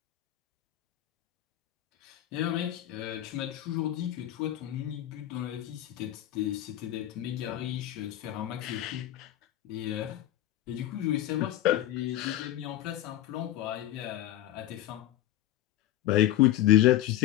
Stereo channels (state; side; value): quieter; right; 13.8 dB